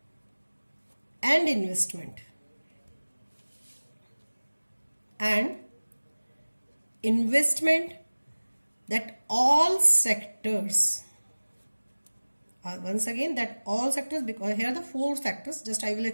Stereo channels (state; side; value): inverted; both; correlation -1.00